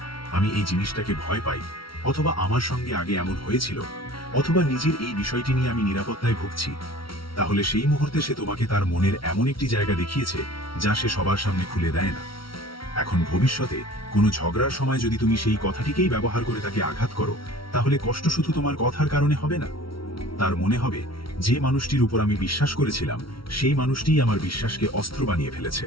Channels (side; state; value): right; late; 0.74 ms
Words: আমি এই জিনিসটাকে ভয় পাই, অথবা আমার সঙ্গে আগে এমন হয়েছিল, অথবা নিজের এই বিষয়টি নিয়ে আমি নিরাপত্তায় ভুগছি, তাহলে সেই মুহূর্তে সে তোমাকে তার মনের এমন একটি জায়গা দেখিয়েছে যা সে সবার সামনে খুলে দেয় না। এখন ভবিষ্যতে কোনো ঝগড়ার সময় যদি তুমি সেই কথাটিকেই ব্যবহার করে তাকে আঘাত করো, তাহলে কষ্ট শুধু তোমার কথার কারণে হবে না। তার মনে হবে যে মানুষটির উপর আমি বিশ্বাস করেছিলাম সেই মানুষটিই আমার বিশ্বাসকে অস্ত্র বানিয়ে ফেলেছে।